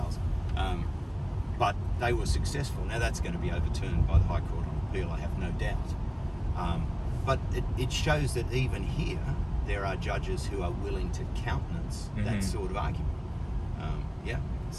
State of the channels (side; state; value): both; identical; correlation 1.00